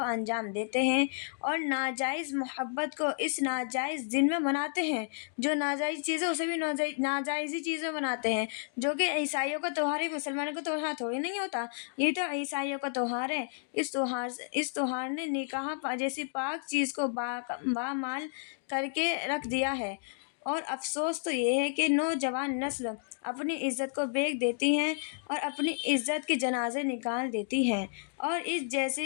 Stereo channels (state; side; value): silent; right; digital silence